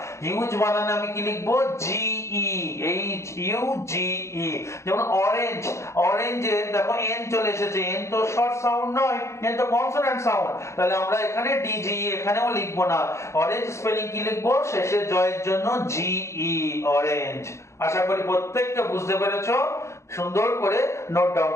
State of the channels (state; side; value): late; right; 0.14 ms